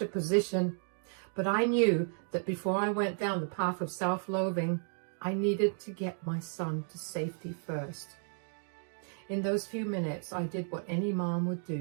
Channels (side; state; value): left; silent; 56 dB below the other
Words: a position. But I knew that before I went down the path of self-loathing, I needed to get my son to safety first. In those few minutes, I did what any mom would